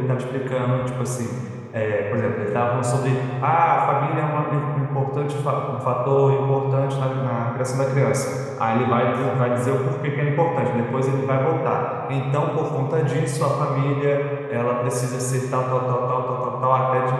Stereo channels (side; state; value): both; identical; correlation 1.00